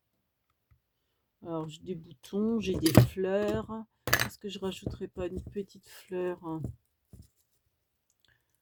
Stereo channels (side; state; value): both; identical; correlation 1.00